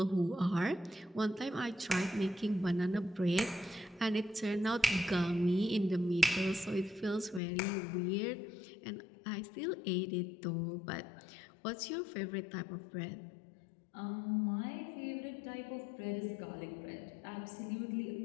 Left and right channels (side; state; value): right; drops out; at 7.4 s